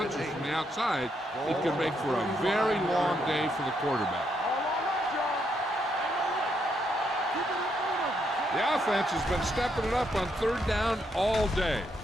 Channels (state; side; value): normal; both; correlation 0.77